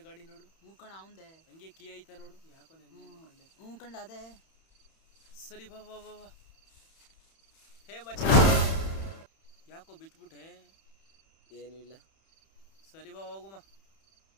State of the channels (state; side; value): late; right; 31 ms